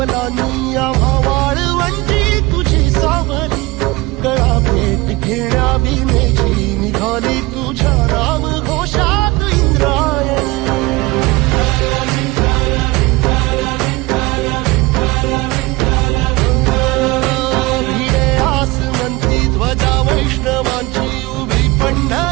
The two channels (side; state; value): left; quieter; 22.1 dB